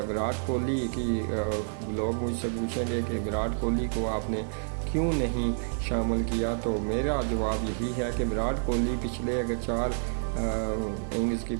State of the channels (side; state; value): left; silent; digital silence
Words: कोहली की लोग मुझसे पूछेंगे कि विराट कोहली को आपने क्यों नहीं शामिल किया, तो मेरा जवाब यही है कि विराट कोहली पिछले अगर 4 इनिंग्स की